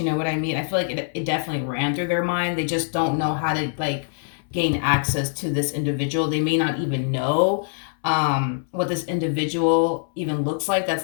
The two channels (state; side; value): silent; right; 63 dB below the other